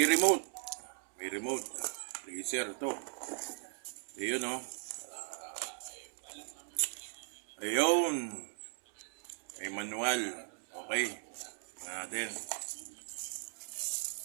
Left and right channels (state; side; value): silent; left; digital silence